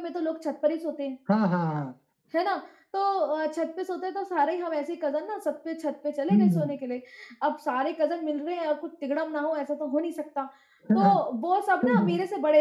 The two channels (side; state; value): both; identical; correlation 1.00